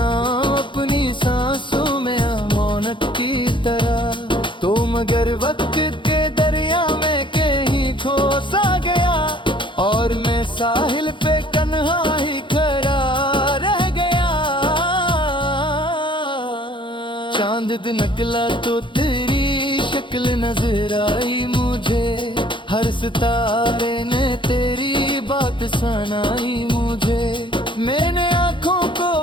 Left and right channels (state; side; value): late; right; 0.23 ms